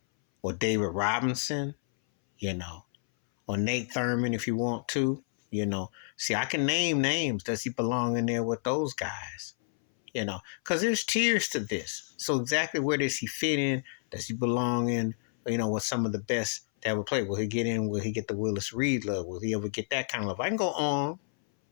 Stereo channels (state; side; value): silent; right; 58 dB below the other